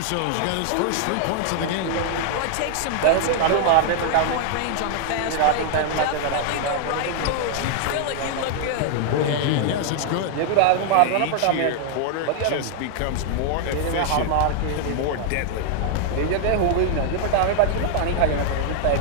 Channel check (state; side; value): different; both; correlation 0.00